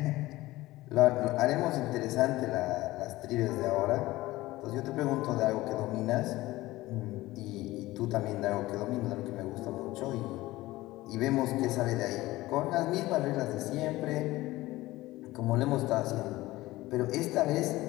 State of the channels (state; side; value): quieter; right; 18.1 dB